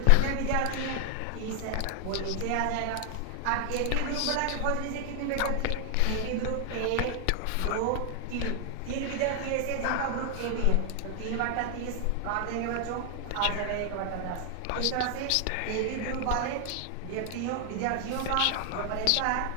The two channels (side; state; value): both; different; correlation 0.00